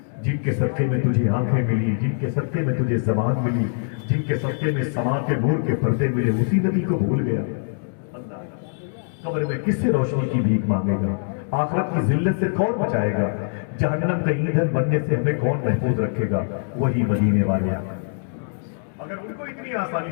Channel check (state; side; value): silent; right; digital silence